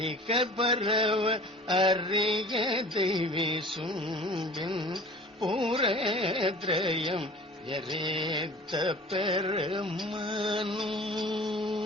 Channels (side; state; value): both; normal; correlation 0.43